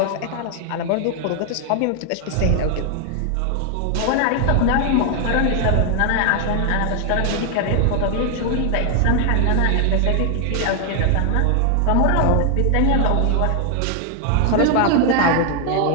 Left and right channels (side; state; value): both; different; correlation 0.00